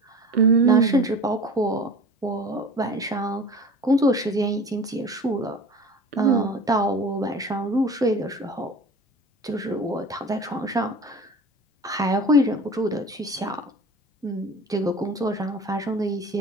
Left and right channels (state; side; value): normal; both; correlation 0.38